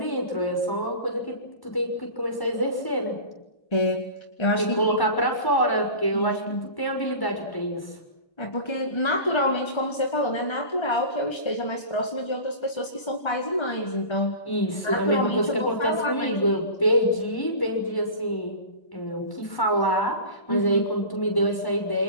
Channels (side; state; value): right; late; 1.1 ms